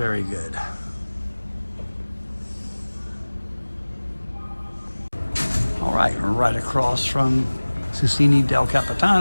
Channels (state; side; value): inverted; both; correlation -1.00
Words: good. All right across from Susini del